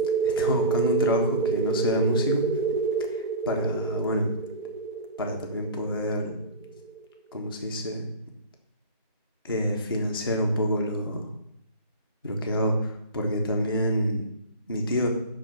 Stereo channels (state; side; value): inverted; both; correlation -0.31